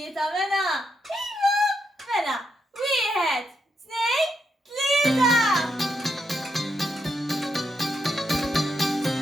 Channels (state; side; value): normal; both; correlation 0.81